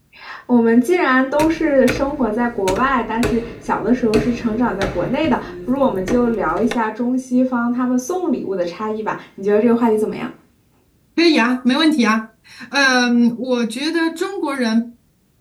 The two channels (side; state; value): both; identical; correlation 1.00